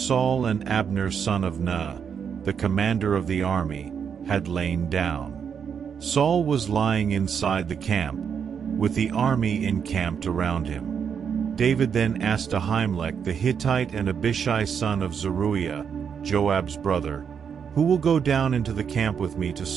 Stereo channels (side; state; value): left; quieter; 7.2 dB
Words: and Abner son of Ner, the commander of the army, had lain down. Saul was lying inside the camp, with the army encamped around him. David then asked Ahimelech the Hittite and Abishai son of Zeruiah, Joab's brother, "Who will go down into the camp with me to